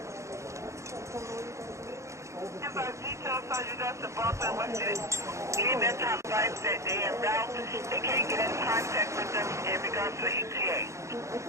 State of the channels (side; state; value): left; late; 0.14 ms